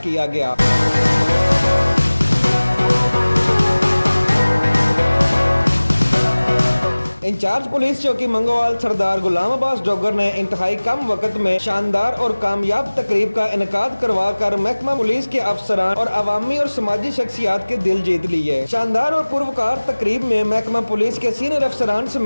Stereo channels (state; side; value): inverted; both; correlation -1.00